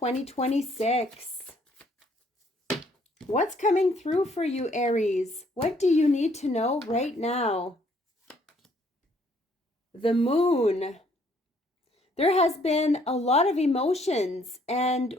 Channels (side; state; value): both; normal; correlation 0.65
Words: What's coming through for you, Aries? What do you need to know right now? The moon. There has been a lot of emotions. And